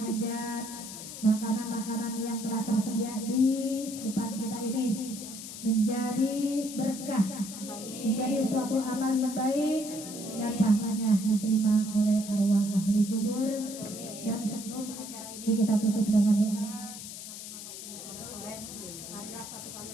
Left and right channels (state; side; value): noise; left; hiss, 10 dB below the sound